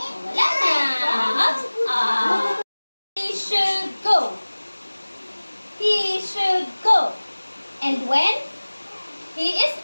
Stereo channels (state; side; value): inverted; both; correlation -1.00